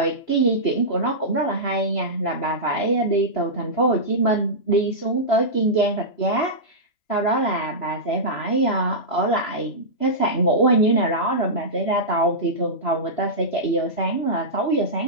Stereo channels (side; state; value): right; late; 3.0 ms